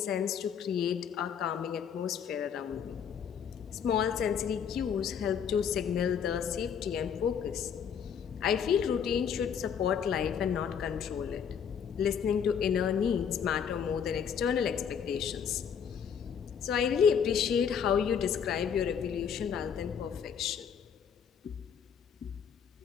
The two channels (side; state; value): right; quieter; 7.6 dB